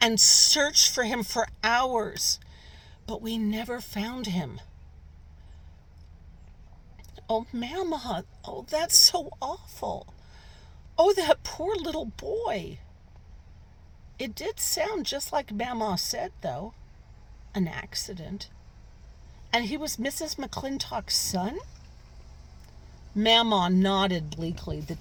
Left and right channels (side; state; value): both; identical; correlation 1.00